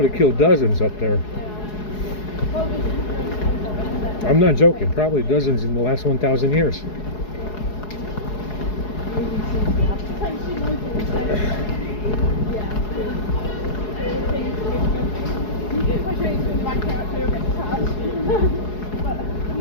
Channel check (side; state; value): right; late; 4.8 ms